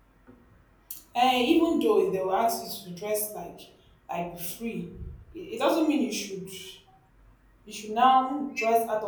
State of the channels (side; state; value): both; identical; correlation 1.00